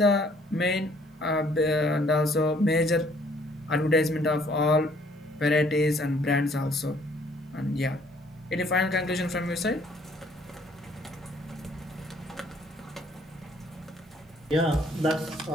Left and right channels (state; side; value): normal; both; correlation 0.62